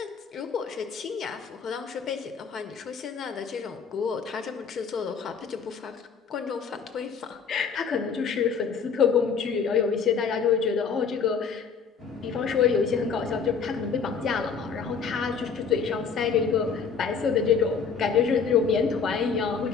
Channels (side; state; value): right; quieter; 6.0 dB